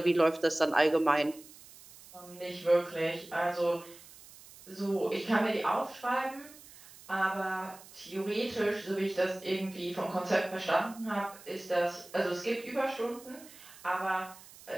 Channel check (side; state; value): right; noise; hiss, 20 dB below the sound